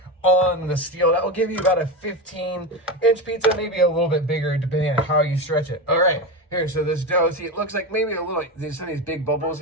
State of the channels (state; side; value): normal; both; correlation 0.19